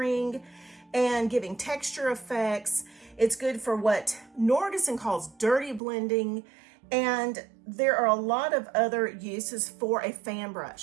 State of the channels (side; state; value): left; drops out; at 5.8 s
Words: and giving texture effects. It's good for what Norgeson calls dirty blending, and there are a lot of other uses for a fan